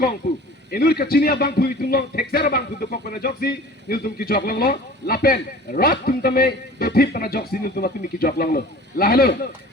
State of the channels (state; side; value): normal; both; correlation 0.43